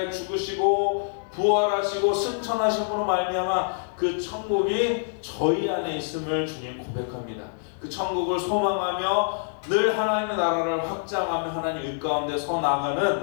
죽으시고 부활하시고 승천하심으로 말미암아 그 천국이 저희 안에 있음을 주님 고백합니다. 그 천국을 소망하며 늘 하나님의 나라를 확장하며 하나님 의 가운데 서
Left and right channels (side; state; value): right; silent; digital silence